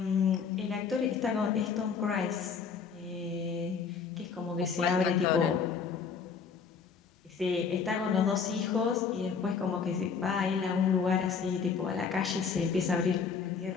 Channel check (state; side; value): quieter; right; 5.9 dB